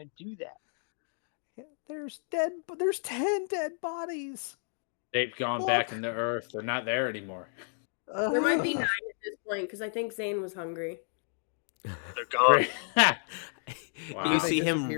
to do that. There's 10 dead bodies. They've gone back into Earth. They're not there anymore. There might be 9 at this point, because I think Zane was hungry. They're gone. Wow. You see him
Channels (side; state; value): right; silent; 57 dB below the other